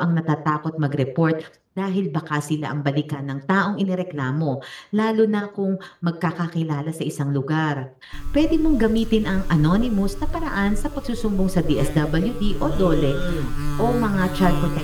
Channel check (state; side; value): identical; both; correlation 1.00